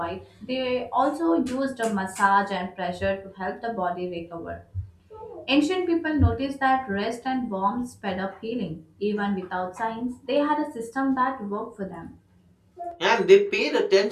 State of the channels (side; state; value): both; identical; correlation 1.00